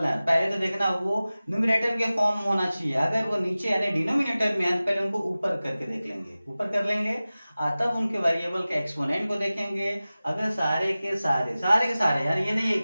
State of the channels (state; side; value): inverted; both; correlation -0.97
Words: हैं पहले तो देखना वो न्यूमरेटर के फॉर्म में होना चाहिए। अगर वो नीचे यानी डिनोमिनेटर में है तो पहले उनको ऊपर करके देख लेंगे, ऊपर कर लेंगे, तब उनके वेरिएबल के एक्सपोनेंट को देखेंगे। अगर सारे के सारे यार ये नहीं